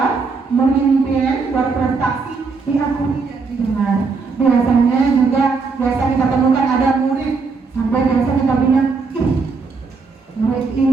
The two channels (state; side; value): quieter; left; 4.6 dB